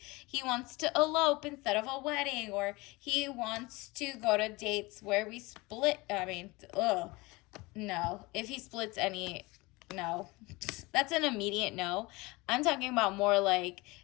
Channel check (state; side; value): quieter; right; 23.5 dB